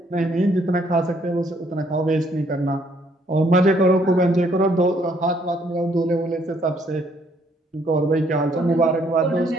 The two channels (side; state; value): both; normal; correlation 0.67